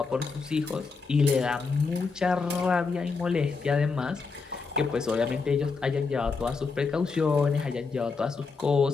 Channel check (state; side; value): quieter; right; 4.6 dB